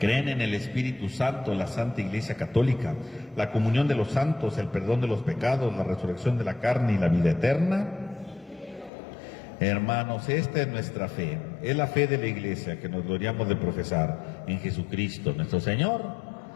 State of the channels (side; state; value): right; drops out; at 8.9 s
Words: en el Espíritu Santo, la Santa Iglesia Católica, la comunión de los santos, el perdón de los pecados, la resurrección de la carne y la vida eterna? Hermanos, esta es nuestra fe, es la fe de la Iglesia que nos gloriamos de profesar en Jesucristo nuestro Señor.